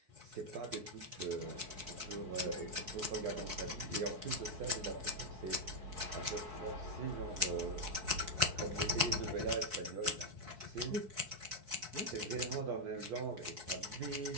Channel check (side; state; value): left; late; 4.3 ms